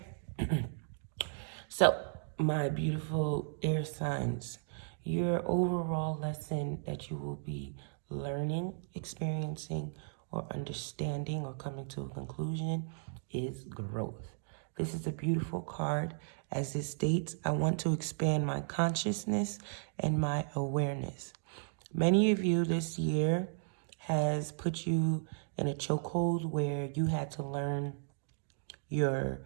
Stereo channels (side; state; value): left; silent; digital silence